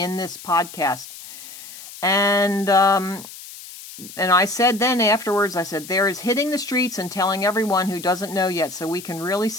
this podcast. And I said then afterwards, I said, there is hitting the streets and telling everyone who doesn't know yet so we can really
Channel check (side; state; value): left; noise; hiss, 15 dB below the sound